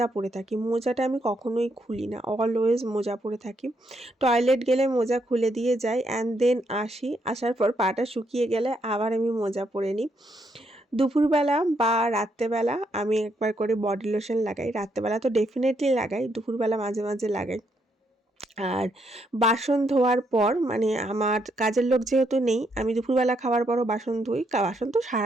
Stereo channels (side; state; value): both; normal; correlation 0.76